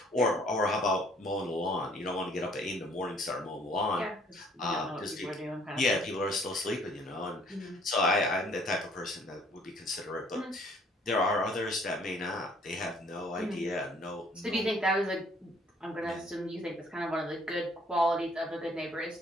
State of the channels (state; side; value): normal; both; correlation 0.60